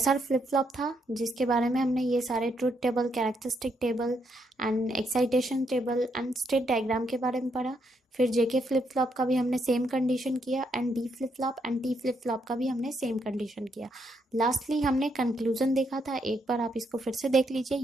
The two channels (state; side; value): normal; both; correlation 0.76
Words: फ्लिप फ्लॉप था, जिसके बारे में हमने ये सारे truth table, characteristic table and excitation table and state diagram के बारे में पढ़ा। फिर जेके फ्लिप फ्लॉप का भी हमने सेम कंडीशन किया and D flip flop and T flip flop का भी हमने सेम कंडीशन किया। लास्टली हमने कंक्लूजन देखा था, एक बार आप इसको फिर से देख लीजिए।